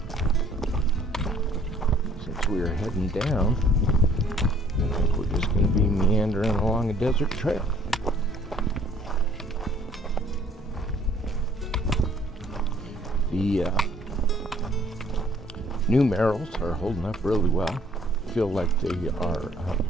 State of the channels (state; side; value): normal; both; correlation 0.59